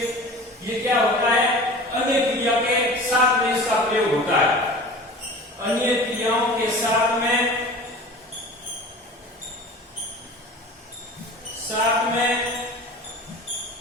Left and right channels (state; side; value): normal; both; correlation 0.39